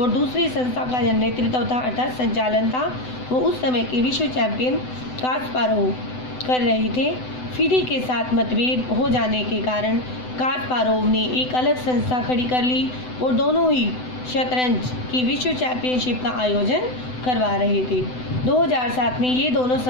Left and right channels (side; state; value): right; late; 7.9 ms